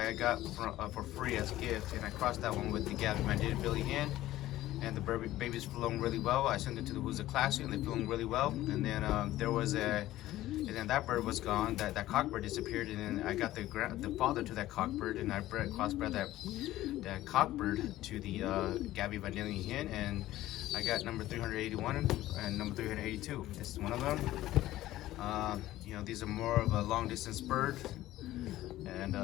I got for free as a gift, and I crossed that one with the Gabby Vandinia Billy hen, and the babies flown really well. I sent it to the Who's a Classy, and they flown really well. And then and then that bird was gone. That cockbird disappeared, and then I got the father to that cockbird, and I crossbred that cockbird to the Gabby Vandinia hen, and I got number 381 and number 382. This is one of them. You know, these are more of a long distance bird, and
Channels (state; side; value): quieter; right; 15.2 dB